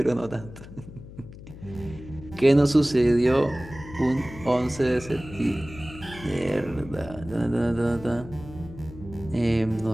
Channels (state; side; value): noise; left; hum, 15 dB below the sound